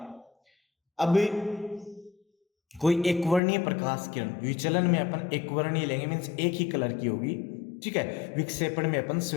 अब कोई एकवर्णीय प्रकाश किरण, विचलन में अपन एकवर्णीय लेंगे, मीन्स एक ही कलर की होगी। ठीक है, विक्षेपण में अपन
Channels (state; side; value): drops out; right; at 3.4 s